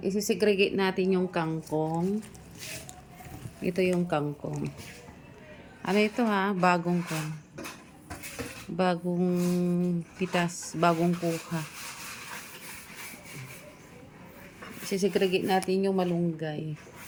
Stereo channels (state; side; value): identical; both; correlation 1.00